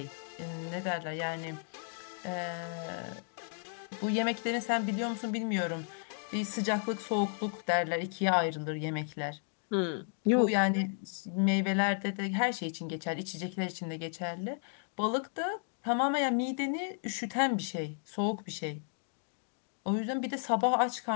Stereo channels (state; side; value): silent; right; 55 dB below the other